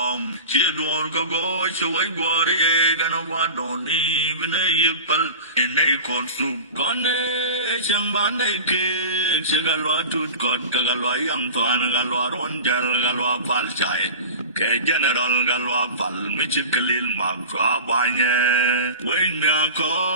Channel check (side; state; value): both; inverted; correlation -0.32